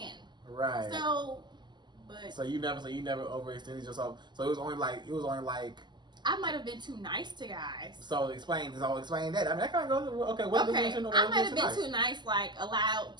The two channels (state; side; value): late; left; 0.21 ms